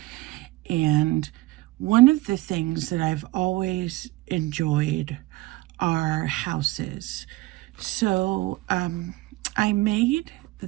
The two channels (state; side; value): quieter; left; 19.3 dB